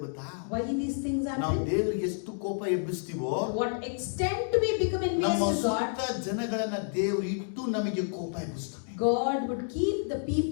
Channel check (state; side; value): silent; right; digital silence